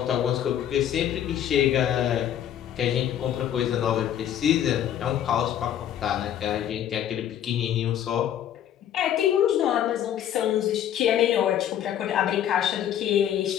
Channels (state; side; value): quieter; right; 10.5 dB